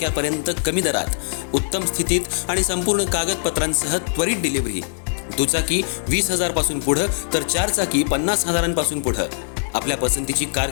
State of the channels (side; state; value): right; silent; digital silence